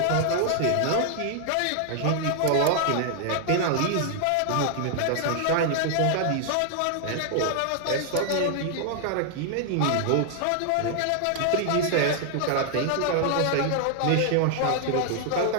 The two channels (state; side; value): different; both; correlation 0.00